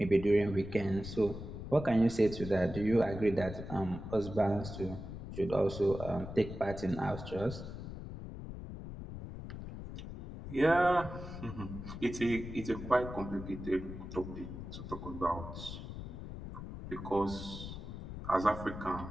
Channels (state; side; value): noise; left; rumble, 9 dB below the sound